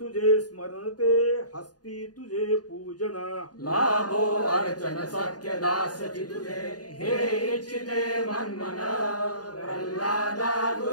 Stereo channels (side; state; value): right; late; 0.69 ms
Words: स्मरणते हस्ती तुझे पूजन लाभो अर्चन सख्य दासची तुझे हे इच्छिते मनमन प्रल्हादा